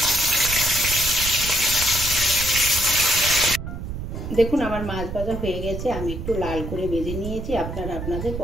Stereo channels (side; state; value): right; noise; rumble, 7 dB below the sound